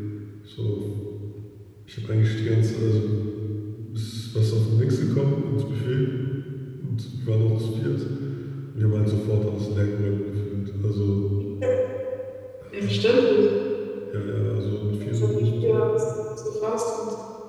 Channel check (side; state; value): both; identical; correlation 1.00